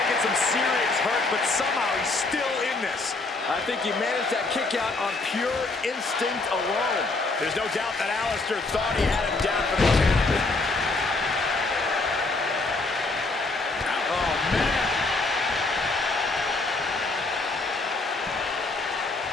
some serious hurt, but somehow he's still in this. I think he managed that kick out on pure instinct alone. There's no doubt that Alistair thought he had him down for the count. Oh, man.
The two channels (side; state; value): right; quieter; 3.4 dB